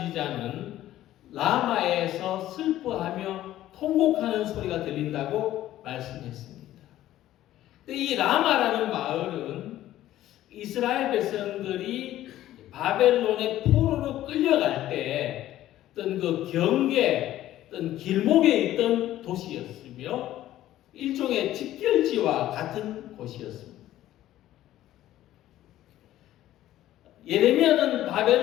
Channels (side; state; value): right; quieter; 13.8 dB